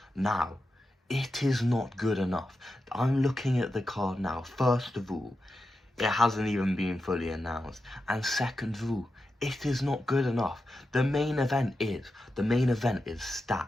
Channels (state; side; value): normal; both; correlation 0.90